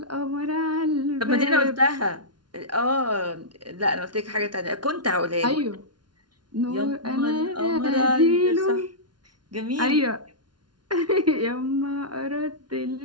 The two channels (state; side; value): late; left; 0.70 ms